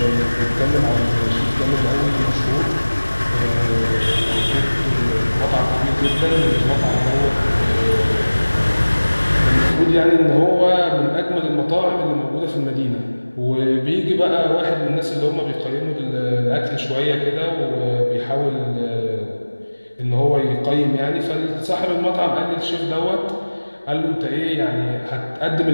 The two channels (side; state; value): both; inverted; correlation -1.00